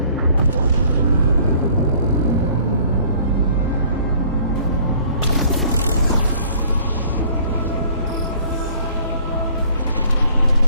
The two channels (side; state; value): both; inverted; correlation -0.56